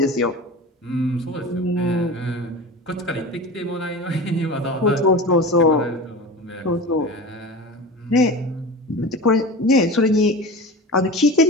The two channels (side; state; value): both; normal; correlation 0.32